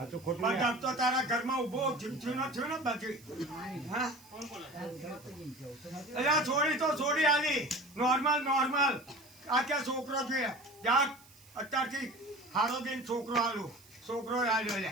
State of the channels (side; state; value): right; noise; hiss, 24 dB below the sound